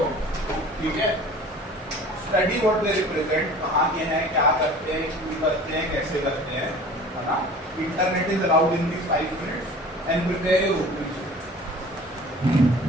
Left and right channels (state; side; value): normal; both; correlation 0.44